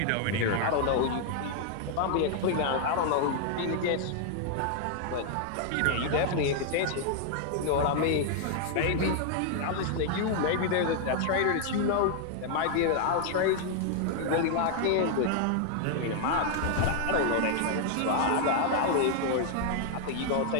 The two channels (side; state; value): both; different; correlation 0.00